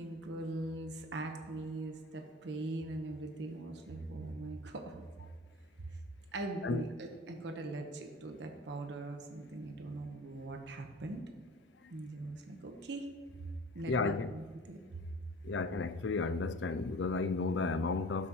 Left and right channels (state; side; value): normal; both; correlation 0.41